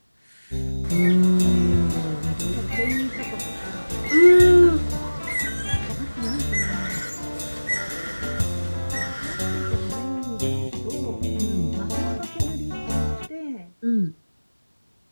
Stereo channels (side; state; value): both; inverted; correlation -1.00